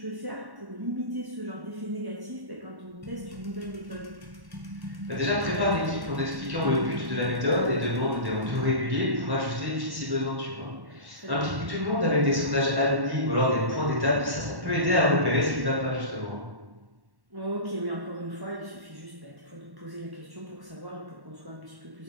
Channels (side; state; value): left; late; 1.1 ms